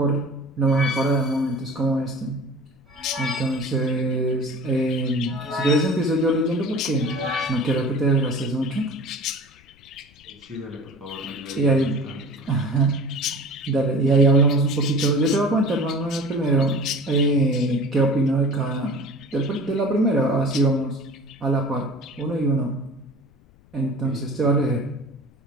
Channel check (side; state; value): left; noise; rumble, 29 dB below the sound